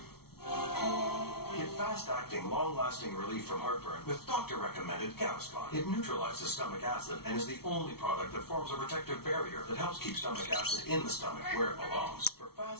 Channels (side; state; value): right; late; 0.95 ms